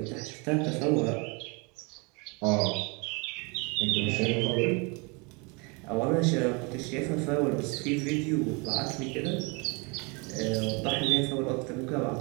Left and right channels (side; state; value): left; quieter; 30.3 dB